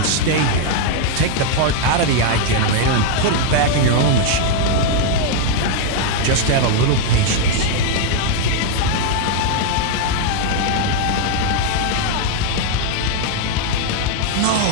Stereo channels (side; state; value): both; different; correlation 0.00